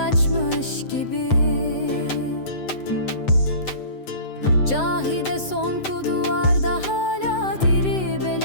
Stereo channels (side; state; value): right; late; 7.9 ms